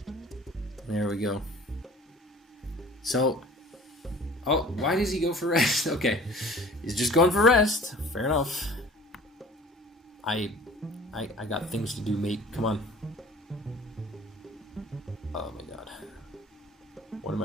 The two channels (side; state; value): both; normal; correlation 0.47